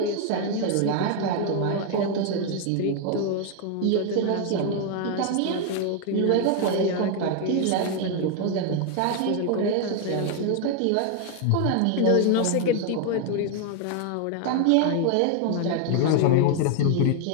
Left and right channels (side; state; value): both; different; correlation 0.00